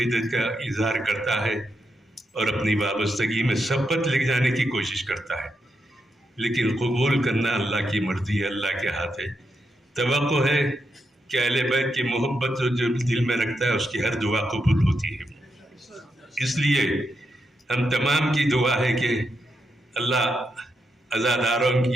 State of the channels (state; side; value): normal; both; correlation 0.83